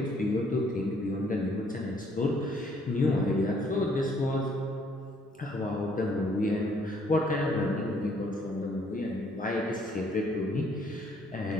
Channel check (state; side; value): normal; both; correlation 0.65